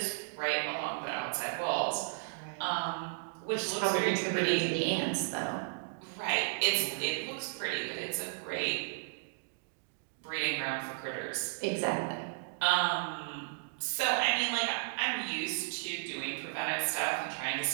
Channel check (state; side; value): silent; left; digital silence